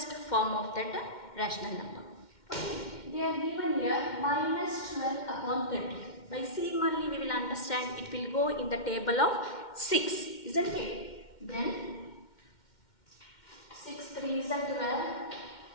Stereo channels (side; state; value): right; late; 2.1 ms